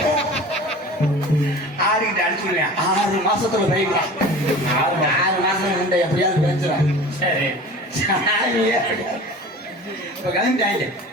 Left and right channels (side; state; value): both; normal; correlation 0.39